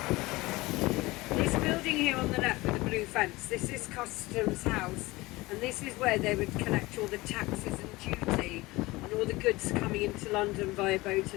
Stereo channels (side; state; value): right; quieter; 21.0 dB